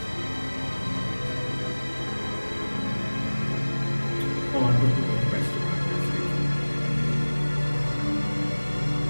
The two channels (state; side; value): inverted; both; correlation -1.00